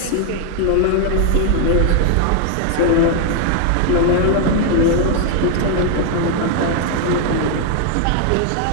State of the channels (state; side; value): different; both; correlation 0.00